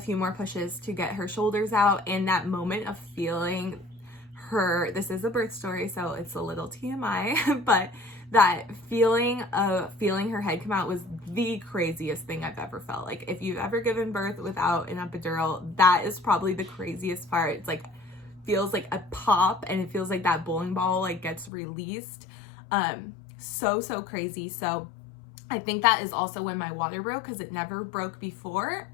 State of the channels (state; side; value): drops out; right; at 21.5 s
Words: few more pushes to get her shoulders out. And that moment of feeling her, this is a birth story, so it's a little TMI, but that feeling of feeling her head come out was the craziest thing I've ever felt. Like, if you've ever given birth without an epidural, that is probably the craziest part. It's like, feels like a pop, and it feels like that bowling ball like gets released. So crazy. So I think that is also when my water broke, because it never broke before.